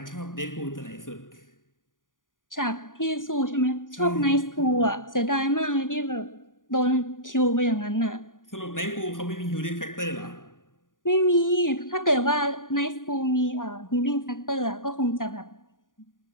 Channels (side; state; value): right; late; 0.89 ms